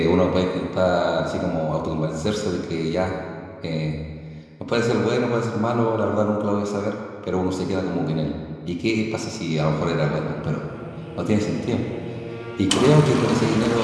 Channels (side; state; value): both; identical; correlation 1.00